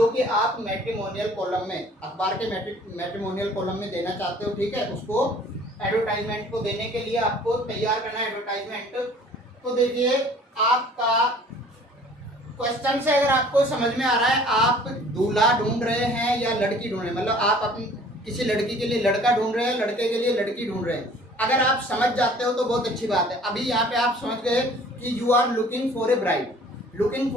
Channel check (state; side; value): normal; both; correlation 0.52